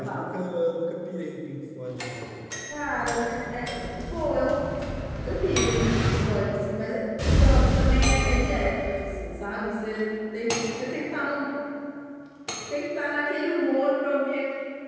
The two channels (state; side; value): identical; both; correlation 1.00